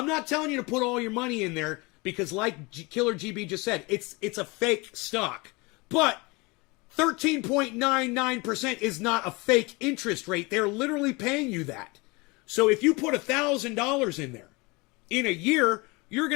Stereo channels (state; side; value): quieter; right; 25.9 dB